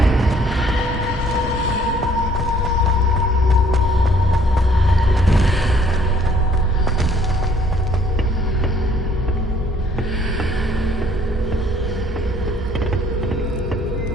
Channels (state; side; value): normal; both; correlation 0.61